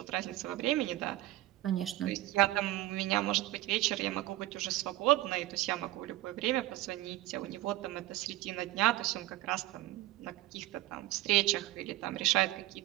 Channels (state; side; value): quieter; left; 16.5 dB